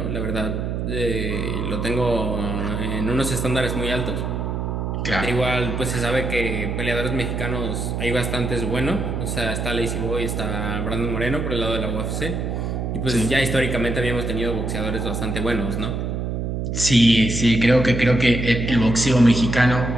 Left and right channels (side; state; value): right; noise; hum, 2 dB below the sound